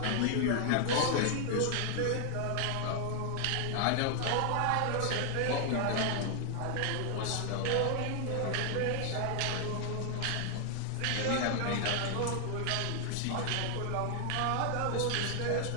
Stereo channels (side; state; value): both; different; correlation 0.00